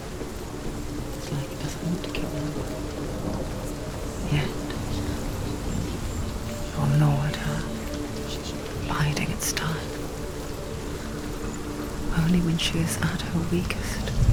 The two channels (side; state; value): both; identical; correlation 1.00